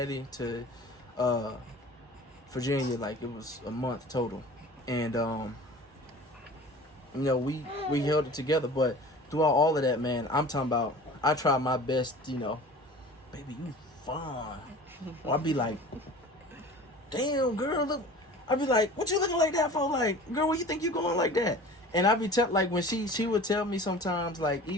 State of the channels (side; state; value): both; normal; correlation 0.41